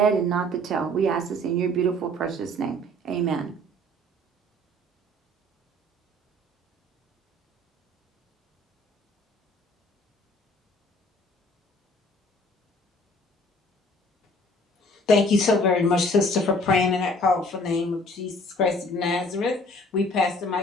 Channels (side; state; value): both; normal; correlation 0.54